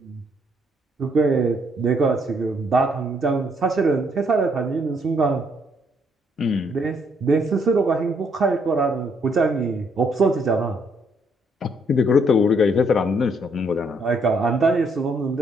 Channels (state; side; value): normal; both; correlation 0.70